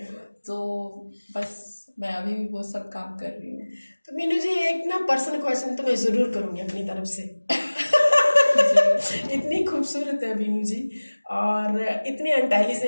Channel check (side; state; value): both; inverted; correlation -1.00